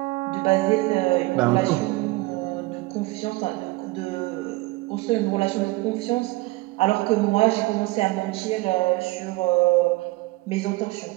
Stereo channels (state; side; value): quieter; left; 21.4 dB